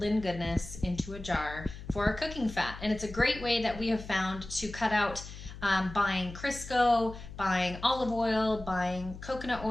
goodness into a jar for our cooking fat. And it's a great way that we have found to cut out buying Crisco, buying olive oil, buying coconut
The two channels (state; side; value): noise; left; hum, 13 dB below the sound